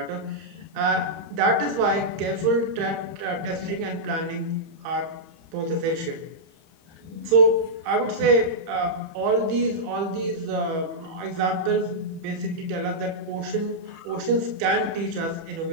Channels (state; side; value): late; left; 30 ms